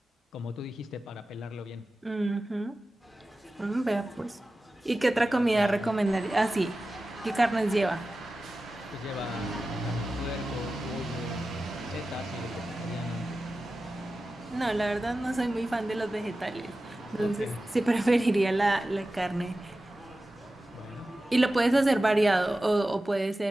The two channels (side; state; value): both; normal; correlation 0.94